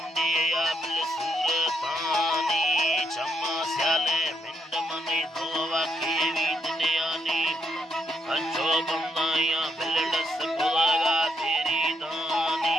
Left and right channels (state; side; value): normal; both; correlation 0.76